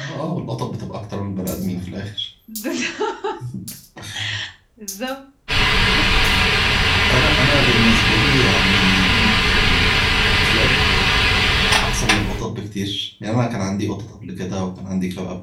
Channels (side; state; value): both; identical; correlation 1.00